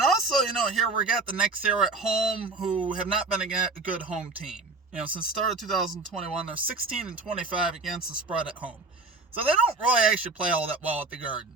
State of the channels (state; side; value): quieter; left; 3.6 dB